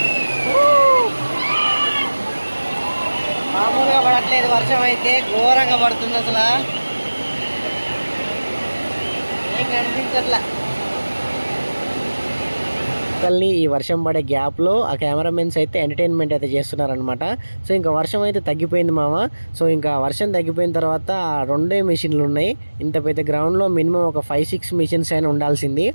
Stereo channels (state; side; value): inverted; both; correlation -1.00